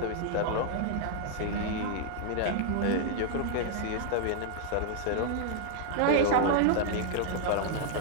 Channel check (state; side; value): different; both; correlation -0.01